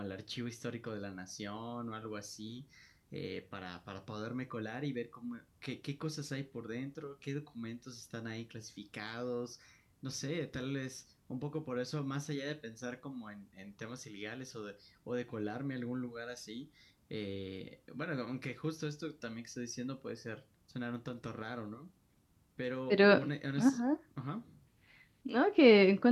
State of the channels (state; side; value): identical; both; correlation 1.00